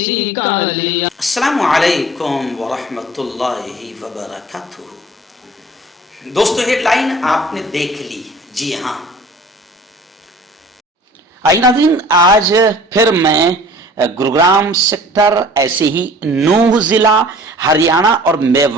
کا لیا۔ السلام علیکم ورحمۃ اللہ وبرکاتہ۔ دوستو ہیڈ لائن آپ نے دیکھ لی، جی ہاں۔ آئی ناظرین، آج پھر میں گروگرام سیکٹر، ایسے ہی نوح ضلع، ہریانہ اور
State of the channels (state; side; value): normal; both; correlation 0.47